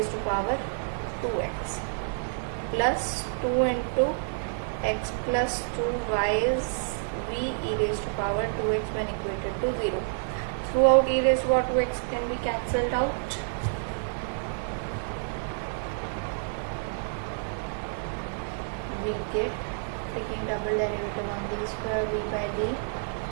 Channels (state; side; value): silent; left; digital silence